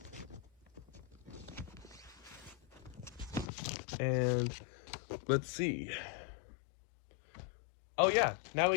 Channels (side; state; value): right; drops out; at 3.5 s